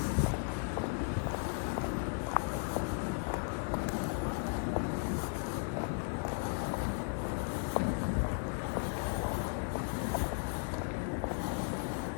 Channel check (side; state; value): right; silent; 54 dB below the other